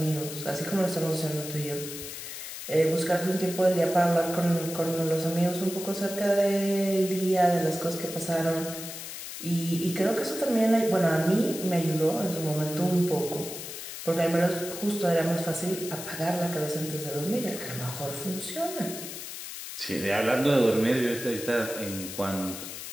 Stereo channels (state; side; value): noise; left; hiss, 9 dB below the sound